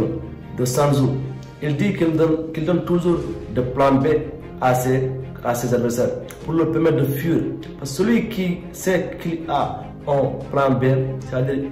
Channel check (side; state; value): both; identical; correlation 1.00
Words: de Sun Tzu, il dit qu'il donne toujours de plan B à ses adversaires pour leur permettre de fuir. Parce que celui qui sait qu'il a un plan B, c'est-à-dire